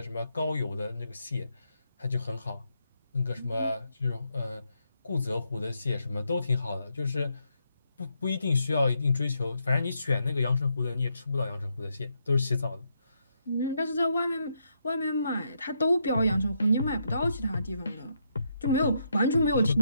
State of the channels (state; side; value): inverted; both; correlation -0.78